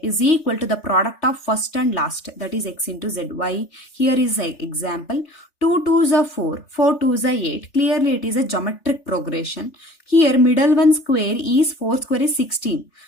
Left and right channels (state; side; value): late; right; 3.4 ms